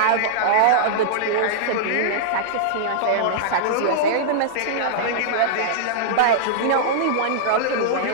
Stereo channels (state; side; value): different; both; correlation -0.02